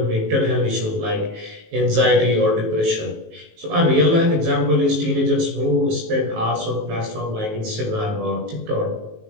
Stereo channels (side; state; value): left; late; 18 ms